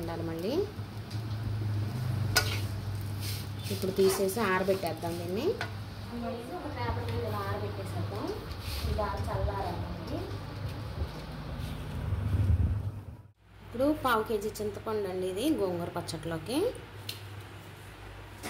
మళ్ళీ ఇప్పుడు తీసేసి ఆరబెట్టేద్దాం దీన్ని. ఒక పేపర్ మీద ఇలా ఆరబెట్టేసేద్దాం. ఇది బాగా చల్లారండి. ఇప్పుడు 1/2 కేజీ చింతపండు అండి ఇది గోంగూర పచ్చట్లోకి.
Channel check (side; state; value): both; identical; correlation 1.00